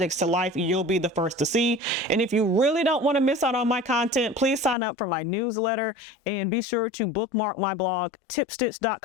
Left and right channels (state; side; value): drops out; right; at 4.8 s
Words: to life, you'll be the first to see. And if you really don't want to miss out on my content, please sign up for my newsletter and be sure to bookmark my blog